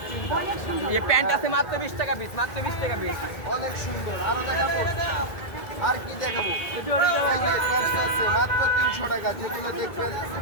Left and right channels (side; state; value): right; late; 2.1 ms